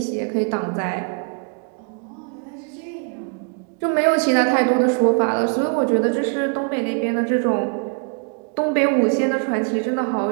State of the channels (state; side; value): quieter; left; 38.8 dB